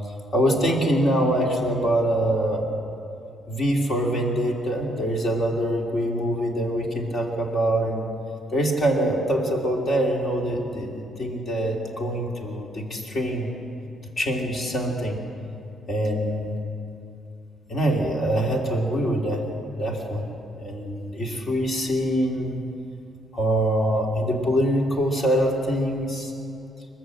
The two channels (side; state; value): both; normal; correlation 0.69